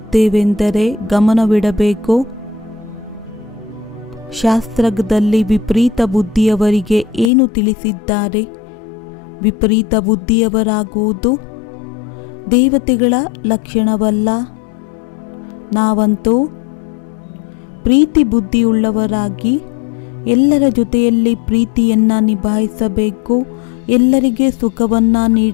ಗಮನವಿಡಬೇಕು. ಶಾಸ್ತ್ರದಲ್ಲಿ ವಿಪರೀತ ಬುದ್ಧಿಯವರಿಗೆ ಏನು ತಿಳಿಸಿದ್ದಾರೆ? ವಿಪರೀತ ಬುದ್ಧಿಯವರಾಗುವುದು ದೇವತೆಗಳ ಲಕ್ಷಣವಲ್ಲ. ನಾವಂತೂ ಪ್ರೀತಿ ಬುದ್ಧಿಯುಳ್ಳವರಾಗಿ ಎಲ್ಲರ ಜೊತೆಯಲ್ಲಿ ಪ್ರೀತಿಯನ್ನು ನಿಭಾಯಿಸಬೇಕು, ಎಲ್ಲರಿಗೆ ಸುಖವನ್ನು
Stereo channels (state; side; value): drops out; right; at 7.3 s